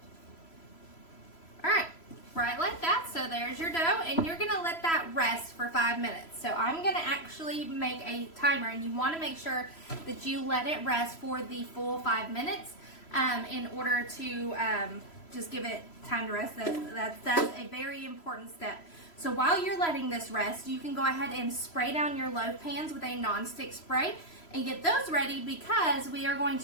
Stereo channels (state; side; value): late; right; 3.0 ms